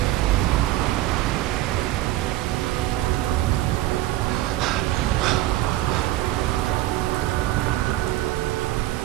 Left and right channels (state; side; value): quieter; left; 15.8 dB